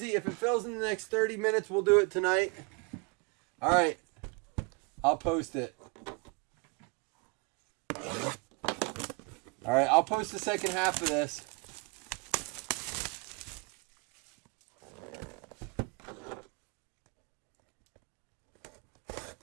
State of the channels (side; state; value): left; quieter; 31.2 dB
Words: If it fills in the next 30 minutes, we'll do it tonight. All right. I'll post it. All right, I'll post the second half of this.